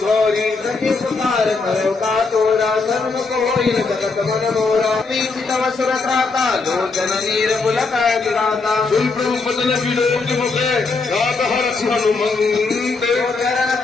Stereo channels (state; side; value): quieter; right; 4.1 dB